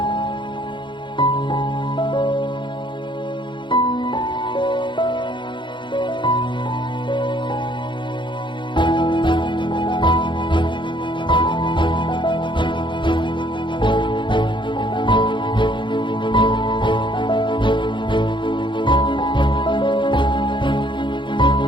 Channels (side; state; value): right; late; 0.23 ms